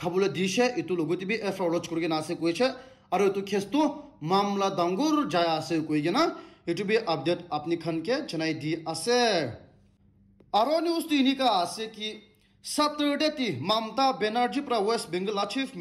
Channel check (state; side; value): identical; both; correlation 1.00